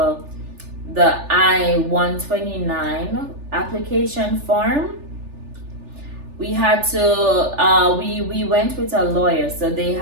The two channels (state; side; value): late; left; 3.4 ms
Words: I-129 application form. We had to we went with a lawyer, so they